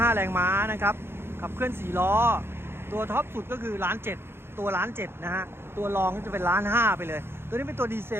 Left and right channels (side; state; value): left; late; 0.11 ms